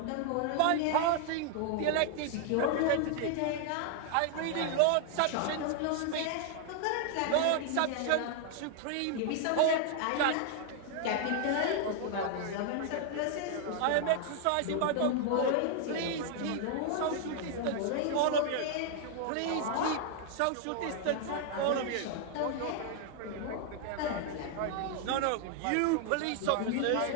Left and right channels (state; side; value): different; both; correlation 0.00